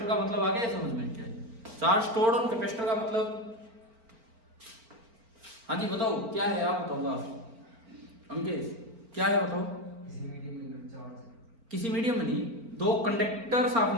का मतलब आ गया समझ में? क्या है चार्ज स्टोर्ड ऑन कैपेसिटर का मतलब? हाँ जी बताओ क्या है, आप बताओ। अंकेश क्या है बताओ? किसी मीडियम के अंदर चार्ज किसी मीडियम में नहीं, दो कंडक्टर्स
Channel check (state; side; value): late; left; 4.4 ms